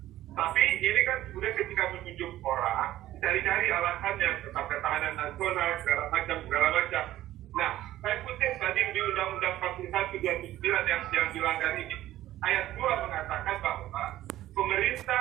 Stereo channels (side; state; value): left; quieter; 14.3 dB